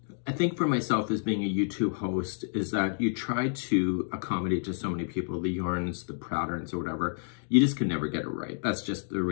I think for myself as being a YouTube host is that you try to accommodate to so many people, the yarns, the patterns or whatever, you just can never get it right. That's just the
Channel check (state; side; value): silent; right; digital silence